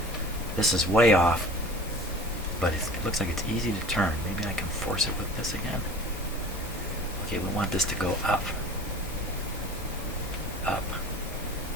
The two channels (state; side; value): normal; both; correlation 0.42